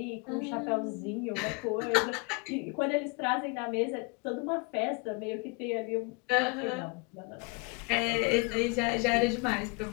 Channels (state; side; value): quieter; right; 29.9 dB